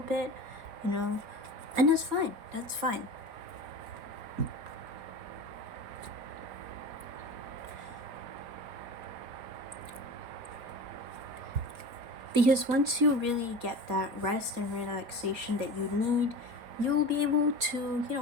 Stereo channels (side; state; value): left; late; 4.2 ms